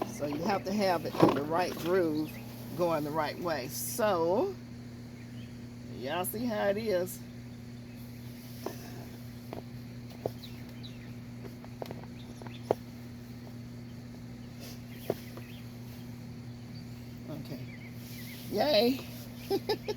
So you have to have it in the right groove going the right way. So, y'all see how it is. Okay. Yay.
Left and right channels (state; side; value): identical; both; correlation 1.00